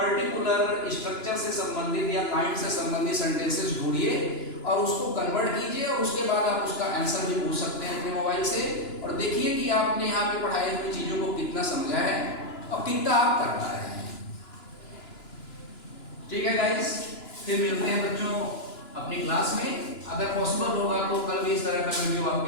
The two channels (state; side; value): late; right; 2.9 ms